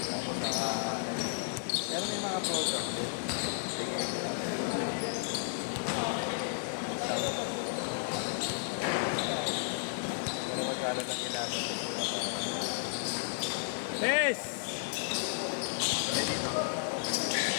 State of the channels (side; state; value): right; silent; 56 dB below the other